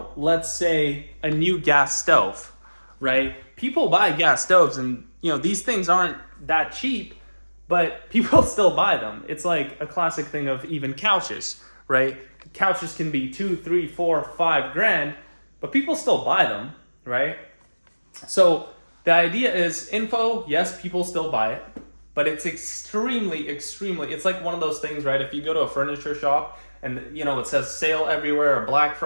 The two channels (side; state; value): both; inverted; correlation -1.00